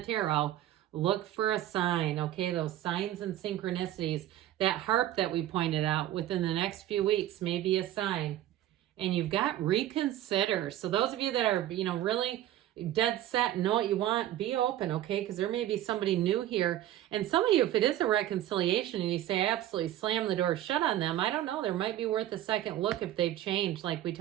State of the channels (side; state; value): left; quieter; 13.0 dB